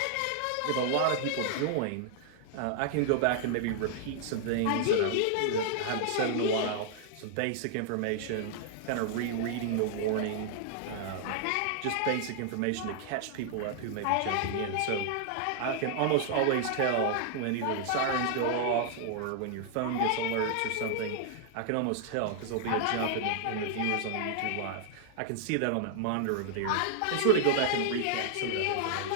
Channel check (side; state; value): both; different; correlation -0.01